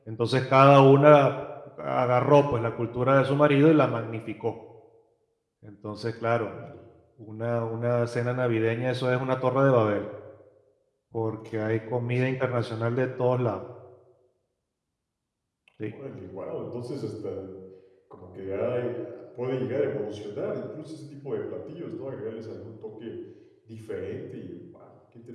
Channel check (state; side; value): identical; both; correlation 1.00